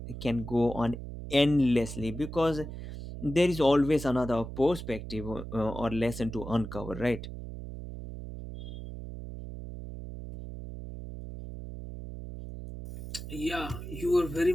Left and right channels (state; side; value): noise; right; hum, 9 dB below the sound